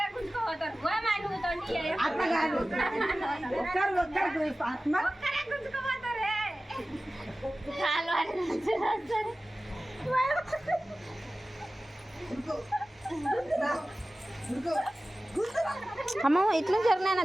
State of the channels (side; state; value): both; normal; correlation 0.96